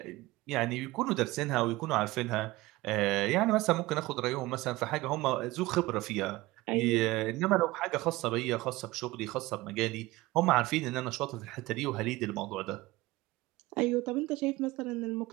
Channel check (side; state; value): left; quieter; 19.7 dB